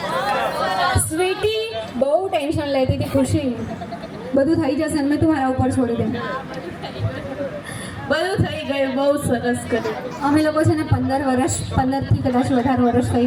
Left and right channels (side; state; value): both; identical; correlation 1.00